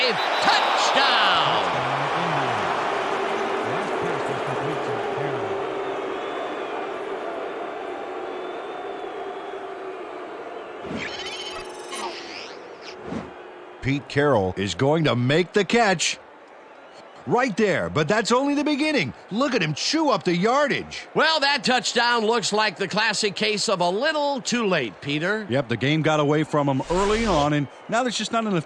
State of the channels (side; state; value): both; identical; correlation 1.00